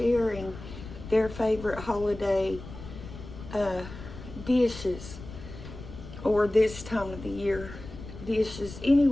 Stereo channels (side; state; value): left; noise; rumble, 13 dB below the sound